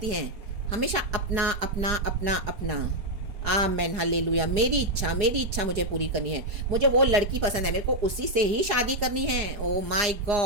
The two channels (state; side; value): late; left; 4.8 ms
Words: हैं, हमेशा अपना अपना अपना अपना। Amen hallelujah. मेरी इच्छा मुझे पूरी करनी है, मुझे वो लड़की पसंद है, मेरे को उसी से ही शादी करनी है। ओ माय